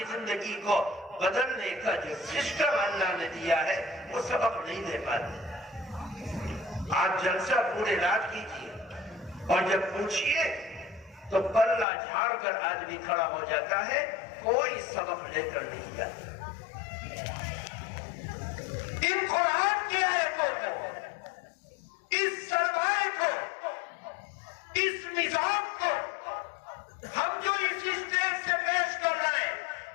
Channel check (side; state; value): right; drops out; at 11.9 s